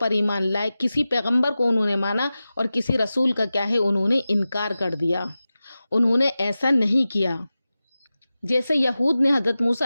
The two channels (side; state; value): both; inverted; correlation -0.95